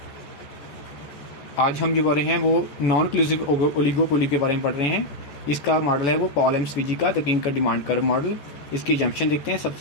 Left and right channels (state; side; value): late; right; 14 ms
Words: आज हम जो पढ़ रहे हैं वो नॉन क्लूसिव ओलिगोपोली के बारे में पढ़ रहे हैं। इसका मॉडल है वो पॉल एम स्वीजी का the Kinkar demand curve model. इसकी जंक्शन देखते हैं।